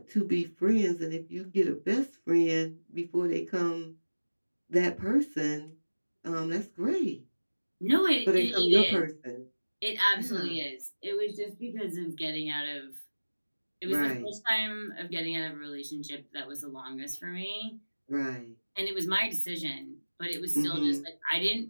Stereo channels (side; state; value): both; inverted; correlation -1.00